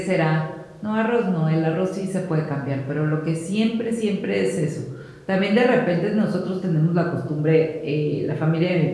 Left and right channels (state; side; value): identical; both; correlation 1.00